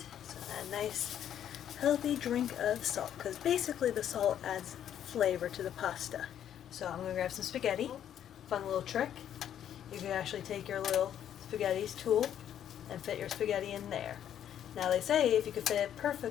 so add a nice healthy drink of salt, because basically the salt adds flavor to the pasta. So I'm going to grab some spaghetti. Fun little trick. You can actually take your little spaghetti tool and fit your spaghetti in there. Now they say if you could fit it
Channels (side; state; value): right; quieter; 10.1 dB